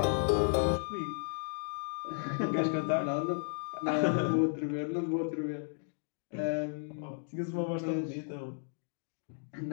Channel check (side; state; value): right; silent; digital silence